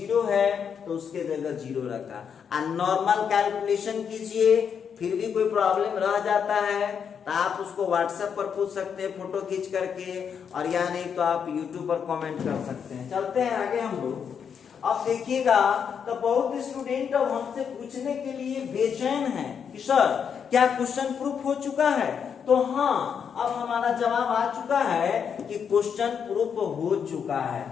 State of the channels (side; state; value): right; quieter; 7.2 dB